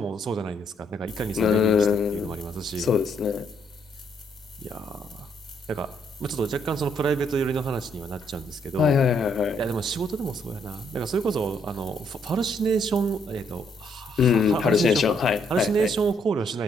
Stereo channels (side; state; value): both; normal; correlation 0.71